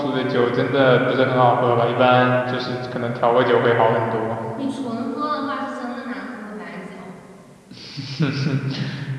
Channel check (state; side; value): identical; both; correlation 1.00